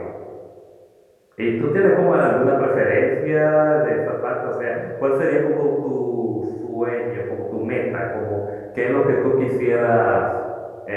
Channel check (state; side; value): identical; both; correlation 1.00